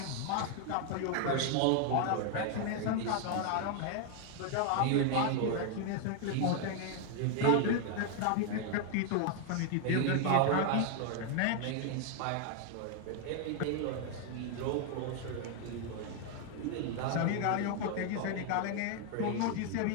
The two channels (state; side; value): different; both; correlation 0.00